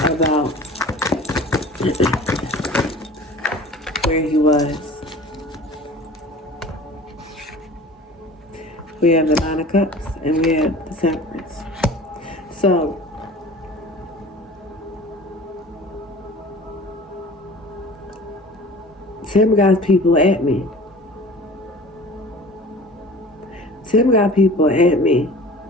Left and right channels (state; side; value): normal; both; correlation 0.42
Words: about where he was? We have the Nine of Cups and we have the Temperance. So, Tim got people at me. Tim got people at me.